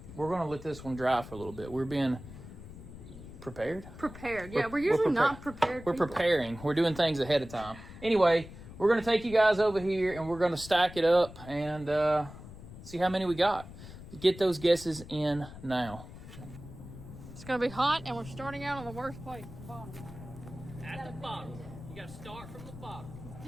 we're gonna let this one dry for a little bit. We're being prepared. Yeah, we're usually not prepared. We're preparing. We're doing things ahead of time. Anyway, we're gonna take you guys over here, and we're gonna stack it up and see how many we got. Get those guesses in now. It's gonna be hot, and we're starting out on the worst place, the bottom. At the bottom. You gotta start from the bottom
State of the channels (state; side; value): noise; left; rumble, 15 dB below the sound